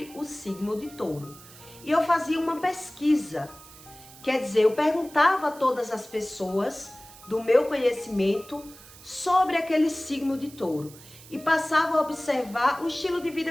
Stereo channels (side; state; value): right; noise; hiss, 20 dB below the sound